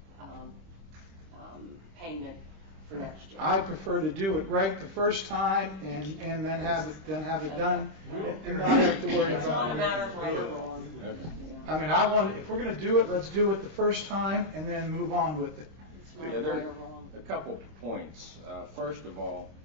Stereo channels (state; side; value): late; left; 25 ms